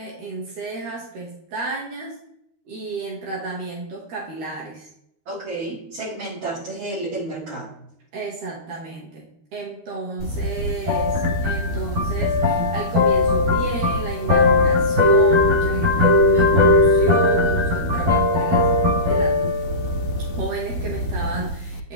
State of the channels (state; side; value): late; left; 13 ms